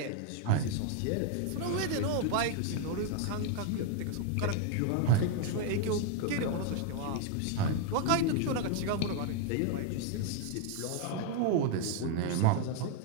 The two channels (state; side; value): different; both; correlation 0.01